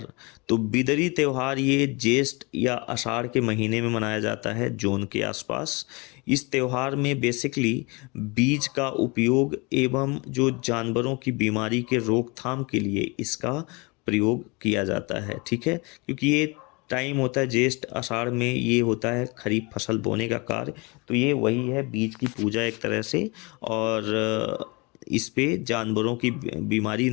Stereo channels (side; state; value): right; quieter; 27.7 dB